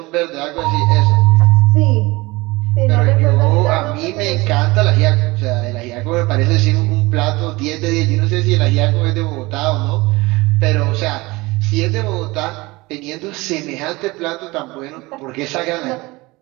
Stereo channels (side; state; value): left; quieter; 22.3 dB